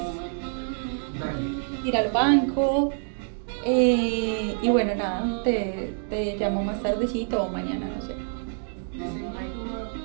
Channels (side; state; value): left; silent; 59 dB below the other